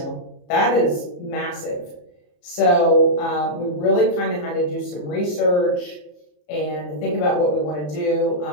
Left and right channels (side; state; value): right; late; 34 ms